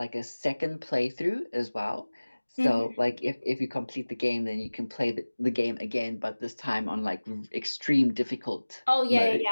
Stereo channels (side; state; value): both; inverted; correlation -1.00